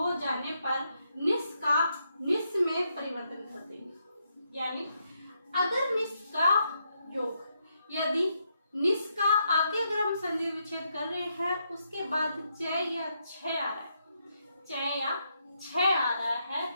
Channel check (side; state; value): both; inverted; correlation -0.79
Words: जाने पर निस का निस में परिवर्तन कर देंगे। यानी अगर निस का योग, यदि निस का आगे अगर हम संधि विच्छेद कर रहे हैं उसके बाद च या छ आ रहा है, च या छ आ रहा है